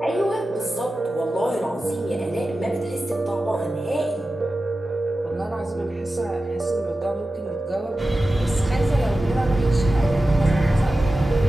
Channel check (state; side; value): normal; both; correlation 0.94